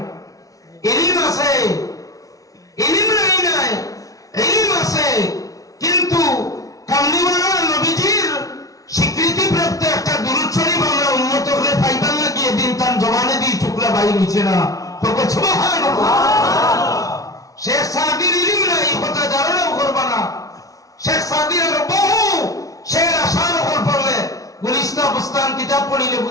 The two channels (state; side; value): late; right; 0.17 ms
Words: ইলম আছে, ইলম নাই, ইলম আছে, কিন্তু কামলিওয়ালা নবীজির স্বীকৃতি প্রাপ্ত একটা দুরূদ শরীফ আমরা উন্নত করে পাইবার লাগিয়ে দিন তার জবানে দিয়ে টুকরা বাইর হইছে না। সুবহানাল্লাহ। শেখ সাদির ইলম নাই, কথা ধারণাও করবা না। শেখ সাদির বহু শের আশার উপর পড়লে গুলিস্তা বুস্তান কিতাব পড়িলে